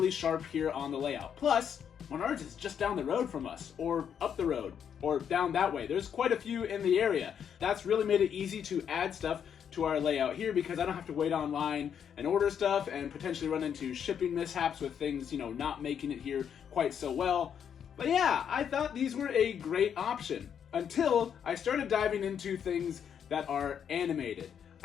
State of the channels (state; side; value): quieter; right; 8.2 dB